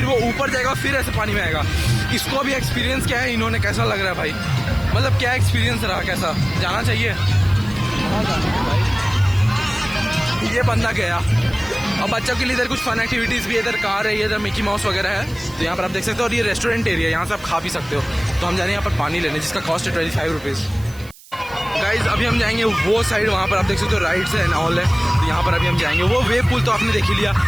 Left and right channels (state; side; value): noise; right; hiss, 22 dB below the sound